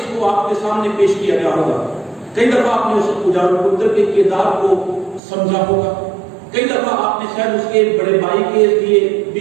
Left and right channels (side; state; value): left; drops out; at 5.2 s